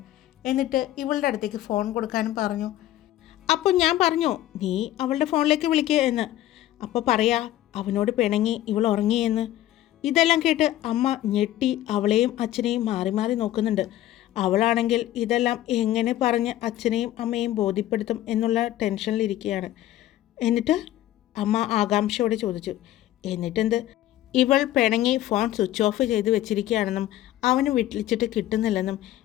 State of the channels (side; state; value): right; quieter; 13.9 dB